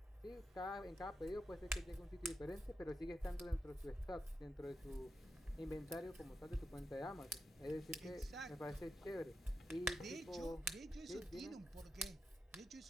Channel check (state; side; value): normal; both; correlation 0.88